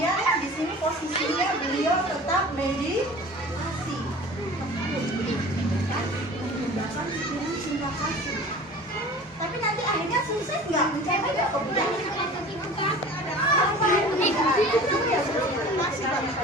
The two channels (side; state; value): both; normal; correlation 0.41